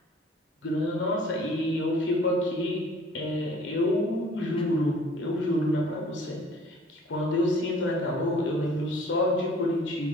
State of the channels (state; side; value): normal; both; correlation 0.52